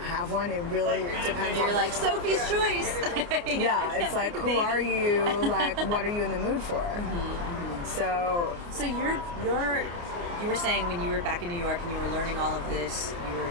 one. It really depends. You're like Sophie's choice. Yeah, it's like, who are you? Like, what are you in the mood for? So you were saying when you were back in New York and you were learning all of this, you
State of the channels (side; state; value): left; late; 29 ms